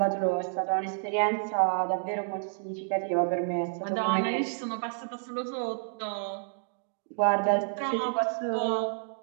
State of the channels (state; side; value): silent; left; digital silence